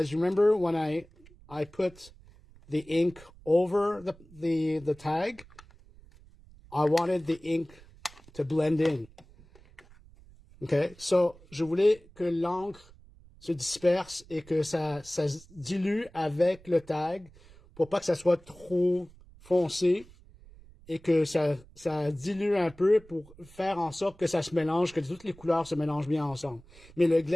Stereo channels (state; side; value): noise; right; rumble, 24 dB below the sound